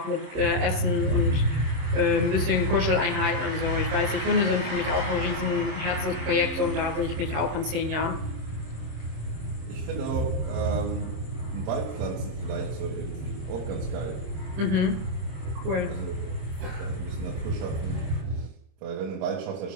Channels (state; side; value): late; left; 26 ms